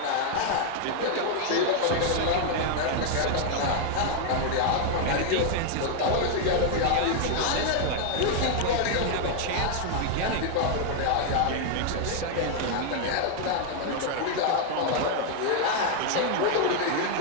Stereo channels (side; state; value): both; different; correlation 0.00